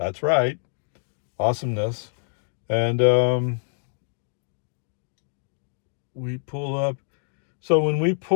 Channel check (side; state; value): right; silent; digital silence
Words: right. Awesomeness. And we pull up. So when we